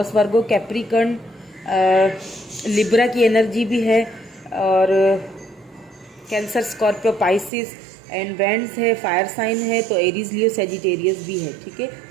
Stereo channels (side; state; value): left; drops out; at 7.5 s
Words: वर्गो, कैप्रिकॉर्न, लिब्रा की एनर्जी भी है, और cancer, Scorpio, Pisces and vends है, फायर साइन है, तो एरीज, लियो, सेजिटेरियस भी है, ठीक है।